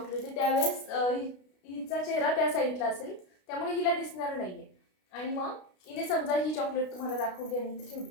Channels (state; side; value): late; right; 33 ms